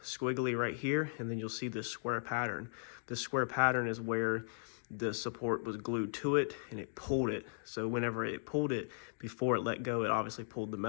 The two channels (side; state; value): right; silent; digital silence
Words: squiggly right here, and then you'll see this square pattern. This square pattern is where the support was glued to it and it pulled it. So whenever it pulled it, before it let go, it obviously pulled the